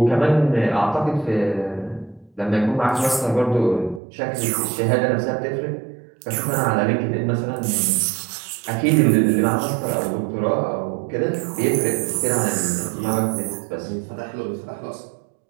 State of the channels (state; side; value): drops out; left; at 4.0 s